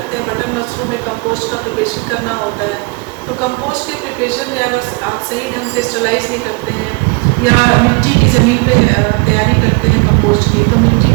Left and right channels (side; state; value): left; quieter; 28.0 dB